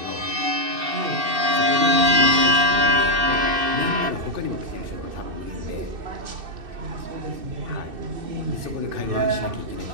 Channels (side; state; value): left; late; 2.6 ms